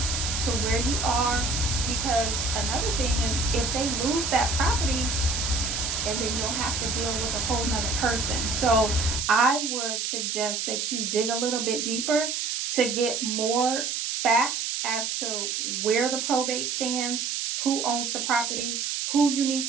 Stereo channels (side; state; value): right; noise; hiss, 1 dB below the sound